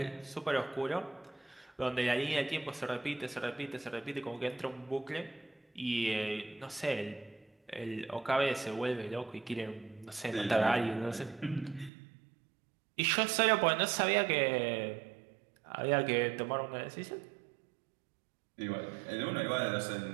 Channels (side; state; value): left; drops out; at 11.9 s